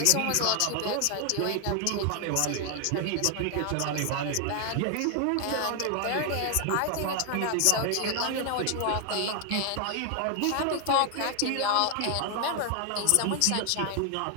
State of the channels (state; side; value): different; both; correlation 0.00